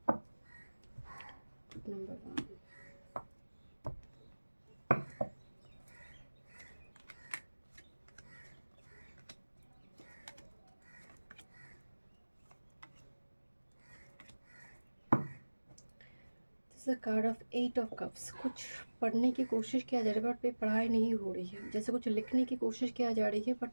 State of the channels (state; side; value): inverted; both; correlation -1.00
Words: Number 1. Card of 8 of cups. कुछ पढ़ने की कोशिश किया जा रहा है बट पढ़ाई नहीं हो रही है. जैसे कुछ लिखने की कोशिश किया जा रही है